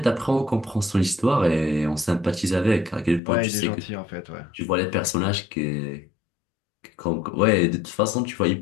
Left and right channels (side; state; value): right; drops out; at 3.2 s